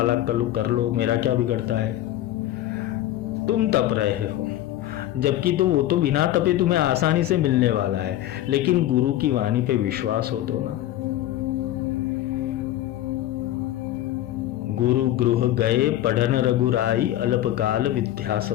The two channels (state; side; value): quieter; right; 13.8 dB